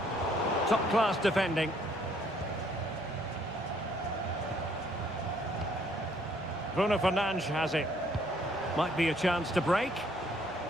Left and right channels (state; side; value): noise; left; hum, 23 dB below the sound